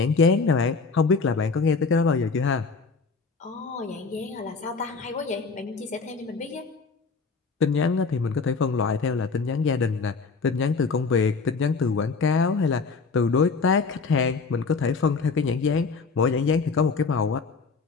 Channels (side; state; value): right; quieter; 4.6 dB